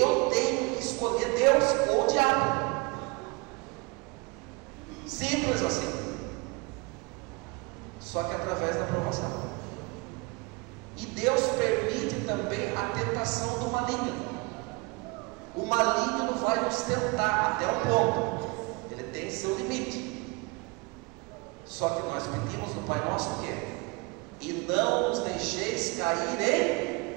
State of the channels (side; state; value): left; quieter; 27.9 dB